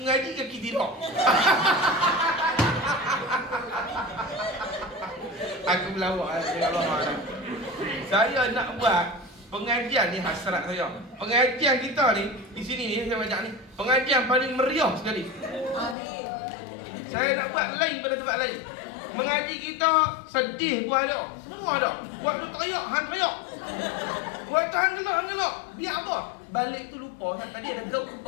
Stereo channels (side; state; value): right; drops out; at 16.0 s